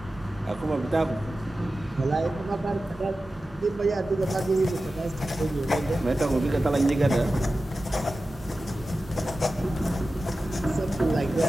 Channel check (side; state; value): both; normal; correlation 0.94